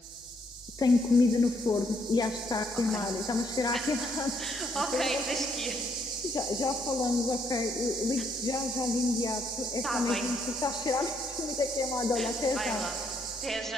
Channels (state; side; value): normal; both; correlation 0.72